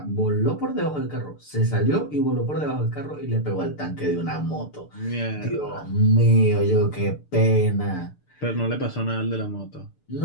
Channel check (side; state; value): right; late; 6.8 ms